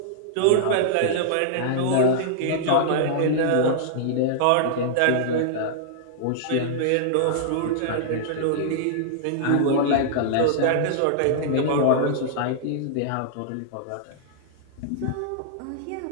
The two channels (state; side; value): different; both; correlation -0.02